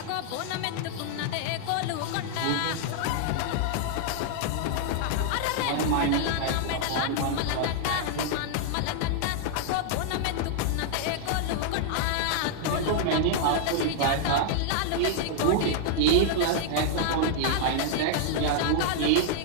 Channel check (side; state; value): both; different; correlation -0.01